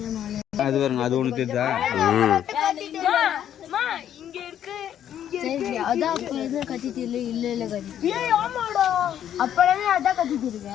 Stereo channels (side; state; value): right; quieter; 10.3 dB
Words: அது பாருங்க, அது ஒன்று தெரியுதா? இங்க இருக்கு. அதான் அப்ப எதுவும் கத்திட்டு இல்ல கத்திட்டு அப்பவே அதான் கத்திட்டு